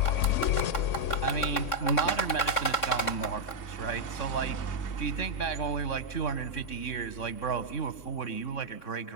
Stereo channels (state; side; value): late; right; 3.6 ms